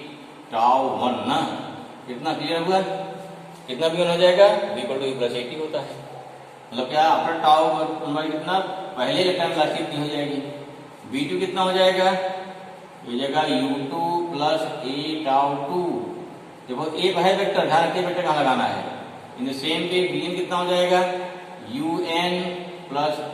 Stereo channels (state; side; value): identical; both; correlation 1.00